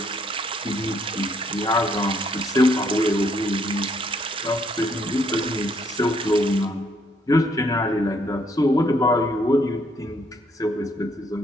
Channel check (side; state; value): both; normal; correlation 0.69